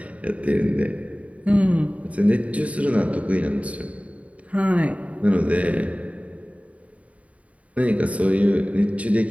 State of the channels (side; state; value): left; late; 0.067 ms